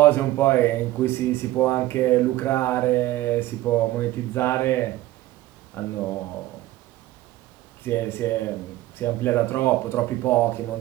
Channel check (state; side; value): quieter; left; 16.0 dB